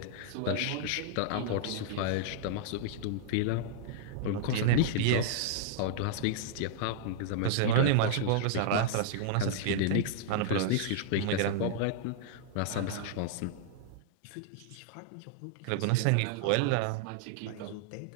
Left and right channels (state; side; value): different; both; correlation -0.01